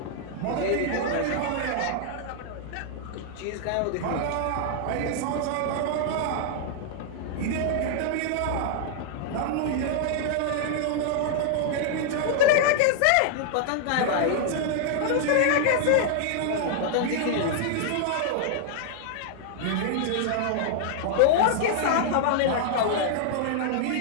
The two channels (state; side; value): different; both; correlation -0.01